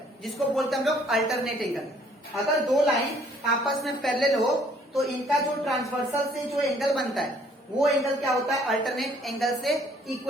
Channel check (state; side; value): normal; both; correlation 0.61